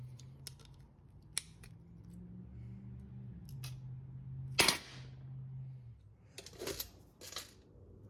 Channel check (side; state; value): both; identical; correlation 1.00